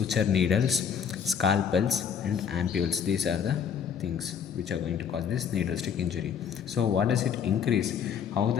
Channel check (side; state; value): right; quieter; 7.6 dB